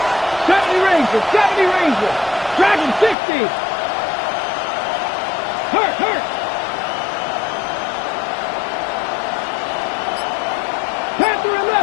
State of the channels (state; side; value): drops out; right; at 3.2 s